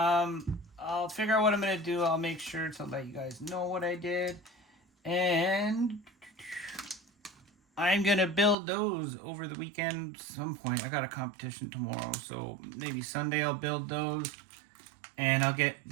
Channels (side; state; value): left; drops out; at 8.6 s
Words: figure out what I'm going to do. I'll make sure to let you guys know what I did. And I'm going to build those over the weekend at some point. I got a competition tomorrow, so maybe Sunday I'll build those. And I'll get